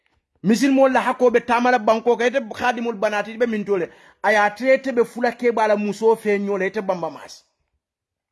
misil mol la hakobe tamala banko ka ite khadimul banati be min tole aya trete be fulake bala muso fe nyole ite bamba masi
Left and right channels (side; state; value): both; identical; correlation 1.00